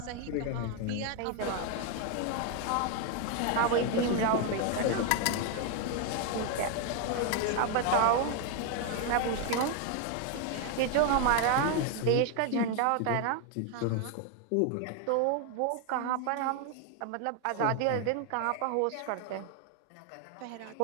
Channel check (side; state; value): both; different; correlation 0.01